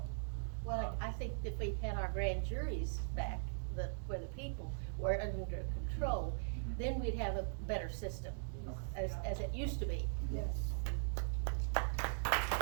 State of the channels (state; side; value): silent; left; digital silence